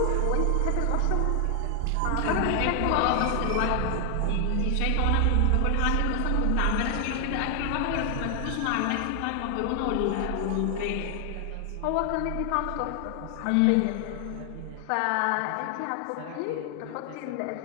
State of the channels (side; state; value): both; different; correlation 0.00